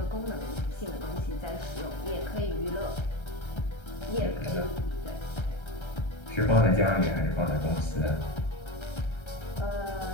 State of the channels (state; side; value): late; right; 1.3 ms